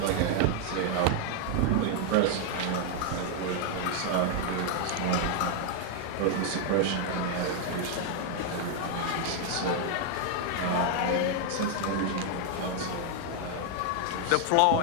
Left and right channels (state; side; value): different; both; correlation 0.00